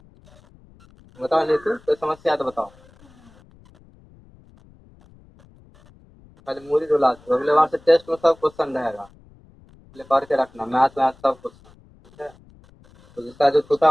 बताओ, नहीं तो कोई समस्या है तो बताओ, पहले मूरी रुला दो, अगले बार से टेस्ट में सब क्वेश्चन रहेगा, पहले पढ़ के रखना, मैथ वैथ सब क्वेश्चन, ठीक है। तो जिसका जो छूटा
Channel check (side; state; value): left; noise; rumble, 27 dB below the sound